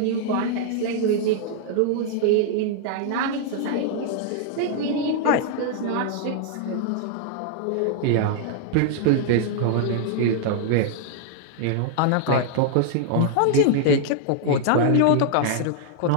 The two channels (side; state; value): both; different; correlation -0.01